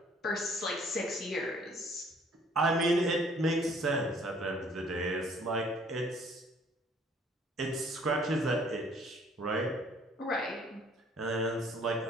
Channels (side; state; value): both; normal; correlation 0.59